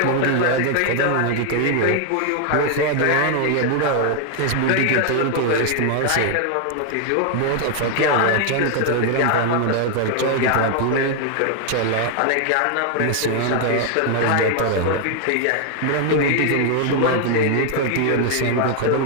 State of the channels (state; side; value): different; both; correlation 0.00